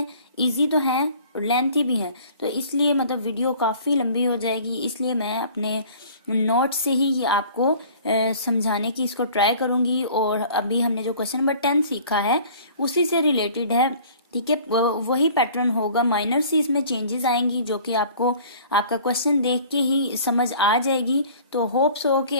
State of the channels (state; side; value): inverted; both; correlation -0.49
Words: इजी तो हैं और लेंथी भी हैं, तो इसलिए मतलब वीडियो काफ़ी लंबी हो जाएगी। इसलिए मैं अपने नोट से ही ये आपको समझाने की इसको ट्राई करूंगी। और अभी हमने जो क्वेश्चन नंबर 10 सीखा है उसी से रिलेटेड है, ठीक है। वही पैटर्न होगा, माइनर सी इसमें चेंजेस आएंगी जो कि आपको आपका क्वेश्चन देख के ही समझ आ जाएगी। तो होप्स हो